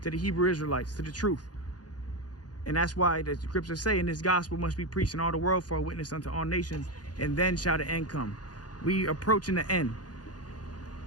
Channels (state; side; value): late; right; 0.69 ms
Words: to the Hebrew Israelites, to the truth. And that's why the scriptures say, and this gospel must be preached in all the world for a witness unto all nations, and then shall the end come. We approaching the end,